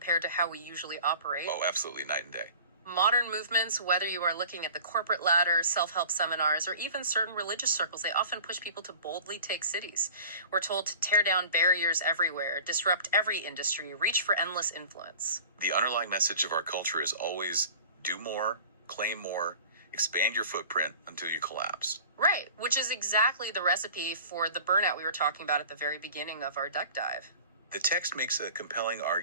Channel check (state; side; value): inverted; both; correlation -0.42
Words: to how we usually operate. Oh, absolutely, night and day. Modern movements, whether you are looking at the corporate ladder, self-help seminars, or even certain religious circles, they often push people to boldly take cities. We're told to tear down barriers everywhere, disrupt every industry, reach for endless influence. The underlying message of our culture is always do more, claim more, Expand your footprint until you collapse. Right, which is exactly the recipe for the burnout we were talking about at the very beginning of our duck dive. The text makes a compelling